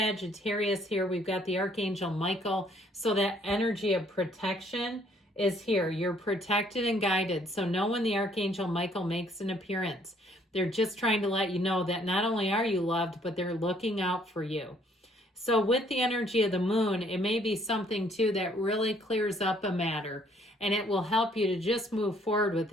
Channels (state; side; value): normal; both; correlation 0.64